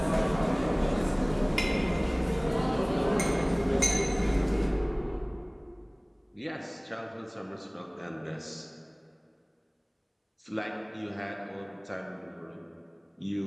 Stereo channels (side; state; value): both; identical; correlation 1.00